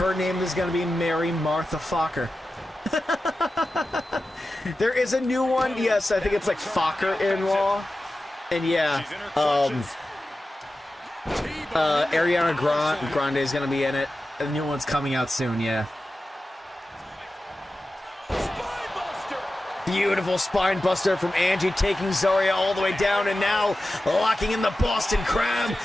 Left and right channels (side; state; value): both; normal; correlation 0.94